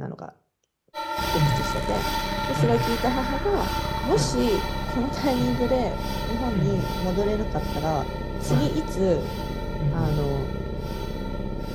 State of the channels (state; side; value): identical; both; correlation 1.00